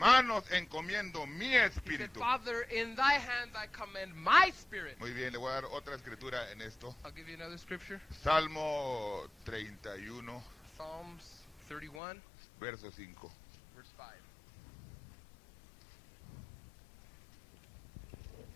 encomiendo mi he said, espíritu. Father, in thy hands I commend my spirit. Muy bien, le voy a dar otra escritura en esto. I'll give you another scripture. Salmo 31, Psalms 31, verso 5. verse 5.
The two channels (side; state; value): right; drops out; at 12.0 s